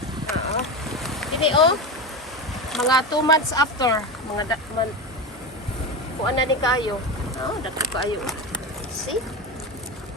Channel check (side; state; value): both; normal; correlation 0.20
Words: Oo. Dini oh. Mga 2 months after, mga kuan na ni kayo. Oh, dako kayo. See?